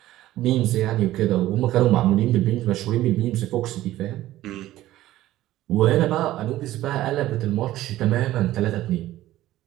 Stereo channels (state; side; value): quieter; left; 15.0 dB